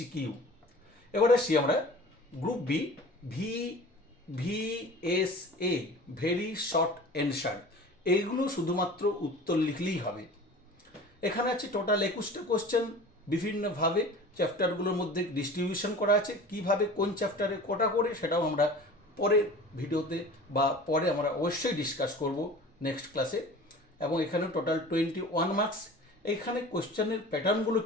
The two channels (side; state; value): both; normal; correlation 0.40